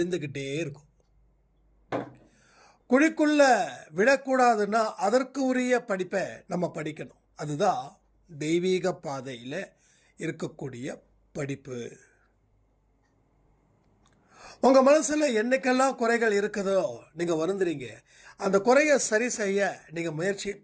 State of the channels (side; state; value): both; identical; correlation 1.00